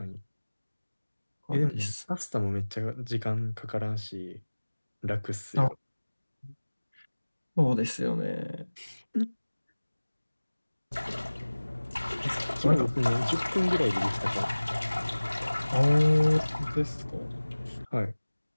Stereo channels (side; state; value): both; inverted; correlation -1.00